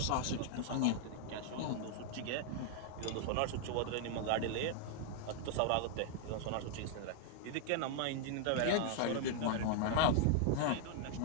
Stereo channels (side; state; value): both; different; correlation 0.00